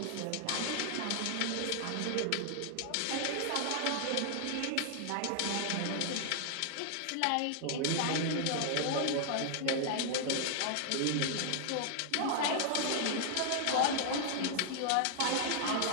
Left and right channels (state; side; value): different; both; correlation -0.01